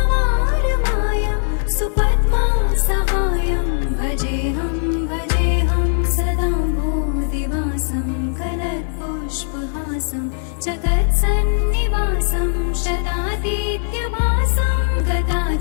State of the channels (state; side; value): silent; right; 55 dB below the other